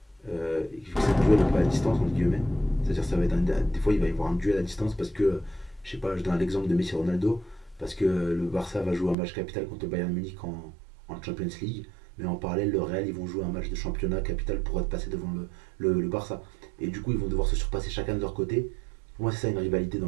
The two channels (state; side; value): drops out; left; at 9.2 s